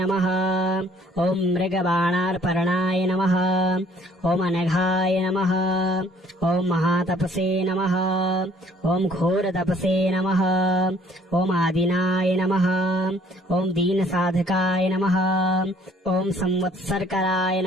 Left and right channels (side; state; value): both; normal; correlation 0.59